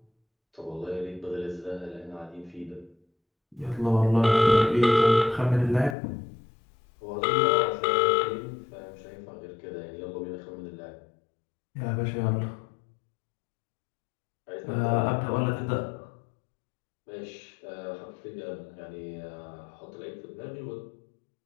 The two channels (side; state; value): right; drops out; at 6.0 s